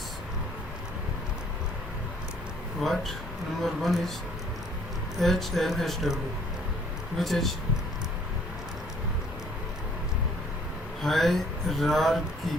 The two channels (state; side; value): normal; both; correlation 0.60